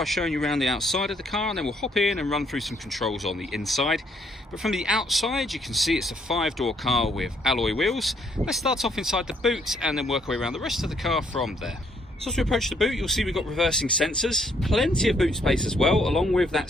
showing you around the outside of the car, and then we'll hop in and run through some controls on the inside. But from the outside you can see it's a 5-door car with alloy wheels. Let's start off inside the boot and then work our way around the rest of the car from there. So as we approach the boot, you'll see we've got reversing sensors, plenty of boot space as well, along with that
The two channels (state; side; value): normal; both; correlation 0.69